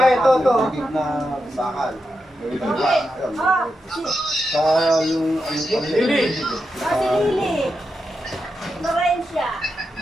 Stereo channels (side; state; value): both; normal; correlation 0.87